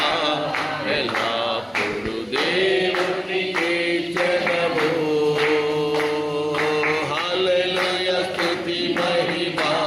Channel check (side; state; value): both; identical; correlation 1.00